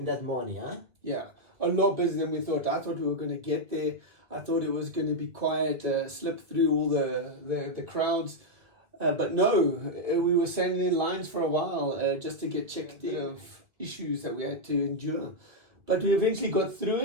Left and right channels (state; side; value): late; left; 2.0 ms